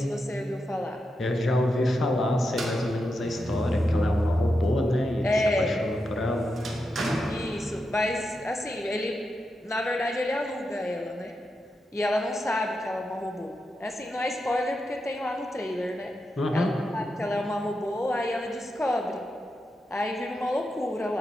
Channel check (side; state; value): both; normal; correlation 0.87